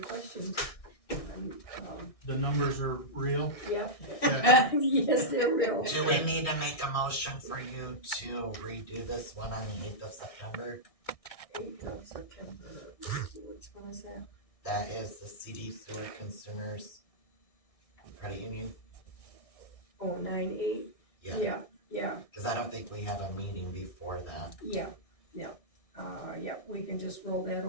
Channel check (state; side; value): late; right; 1.6 ms